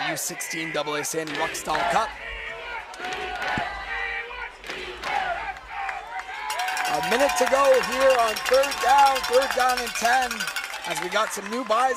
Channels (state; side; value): identical; both; correlation 1.00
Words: U16 AA Sandy Ruckstall Cup. A minute to go here on third down and 10. As we got some new